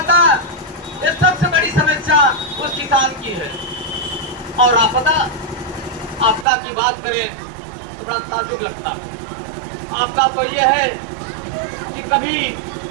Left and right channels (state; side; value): drops out; left; at 6.5 s